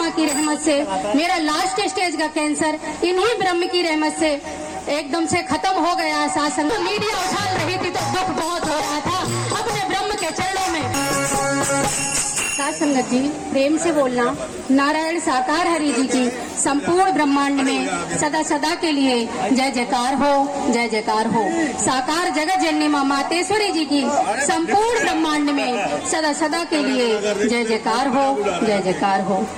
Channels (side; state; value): both; identical; correlation 1.00